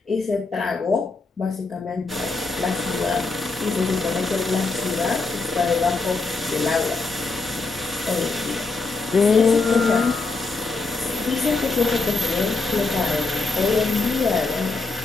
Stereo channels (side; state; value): right; quieter; 3.8 dB